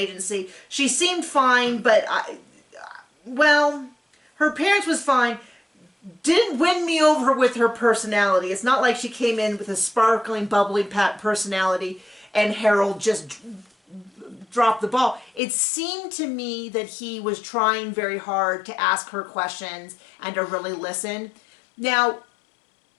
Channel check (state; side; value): drops out; right; at 15.4 s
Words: She seemed fine, but her appearance was fine. Didn't win me over with her personality. It's not like she came in with a sparkling, bubbly personality and Harold just dropped the ball. It seemed to me that he was trying very hard to ask her questions and to really listen. Now,